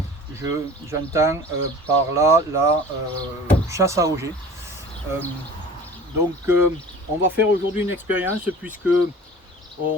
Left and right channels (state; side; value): normal; both; correlation 0.41